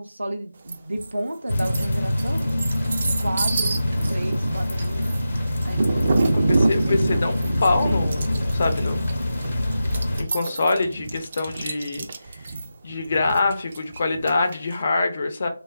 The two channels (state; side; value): inverted; both; correlation -0.90